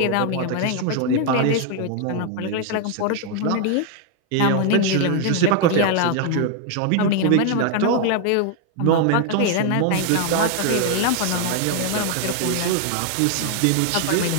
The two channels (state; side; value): different; both; correlation 0.00